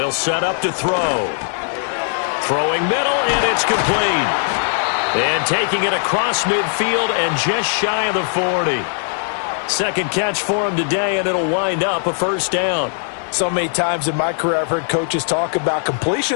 set up to throw. Throwing middle, and it's complete. And taking it across midfield and just shy of the 40. 2nd catch for him today, and it'll wind up a 1st down. So many times in my career I've heard coaches talk about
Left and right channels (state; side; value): silent; right; 67 dB below the other